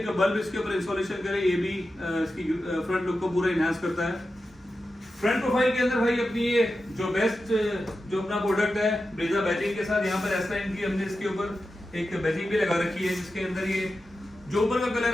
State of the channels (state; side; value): normal; both; correlation 0.91